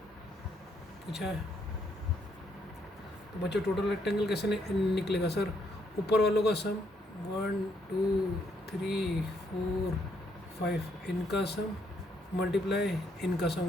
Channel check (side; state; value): both; normal; correlation 0.73